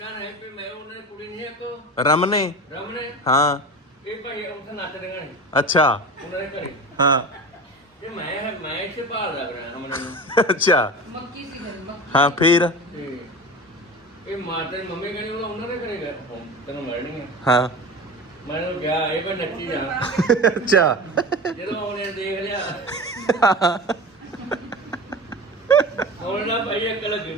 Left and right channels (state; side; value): normal; both; correlation 0.31